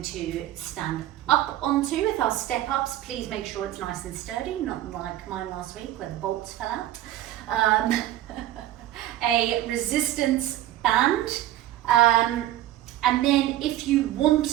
to stand up onto with our step ups. Please make sure it's nice and sturdy, not like mine last week where the bolts fell out. A resistance band, and then if you want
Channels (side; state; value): left; quieter; 13.7 dB